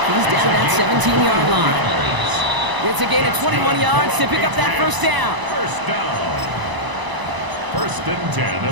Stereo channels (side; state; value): left; late; 1.0 ms